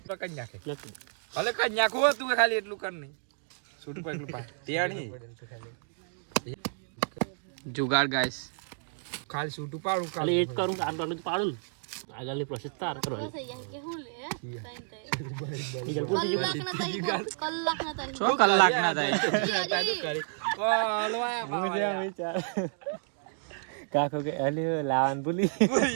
ભલે કઈ નાખો તું ખાલી એટલું કર નહીં. જુગાડ ગાઈસ ખાલી છૂટું પાડું ખાલી એક કરું આટલું પાડું ને આગળની પ્રોસેસ તાર કરવાની. કે હું લે કલાક ના થાય. કાકો કે અલી લાવન ભૂલી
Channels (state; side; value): silent; left; digital silence